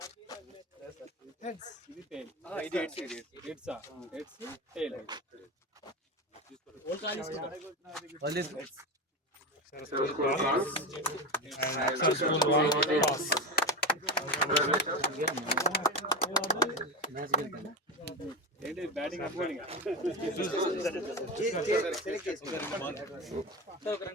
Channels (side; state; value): both; normal; correlation 0.20